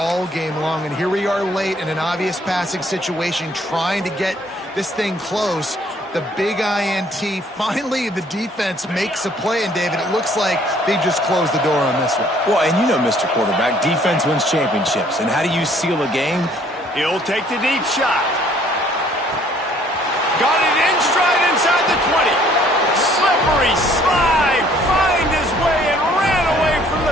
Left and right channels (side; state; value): both; normal; correlation 0.60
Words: game long, and here we are late in an obvious passing situation trying to get this thing close. The big INT, finally the defense makes a play, and David, it looks like they just closed the door on this one. Well, and you know, Mr. Quarterback, defense wins championships. And how do you seal a game? He'll take the deep shot. Got it in stride inside the 20. Slippery slide, find his way and ran away from